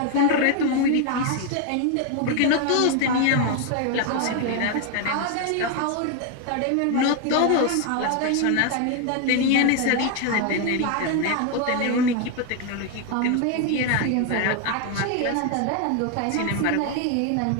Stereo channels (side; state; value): both; different; correlation 0.01